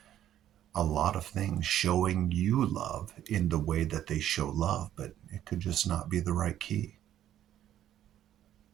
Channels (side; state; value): left; quieter; 11.6 dB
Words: a lot of things showing you love in the way that they show love, but it could just not be the right key.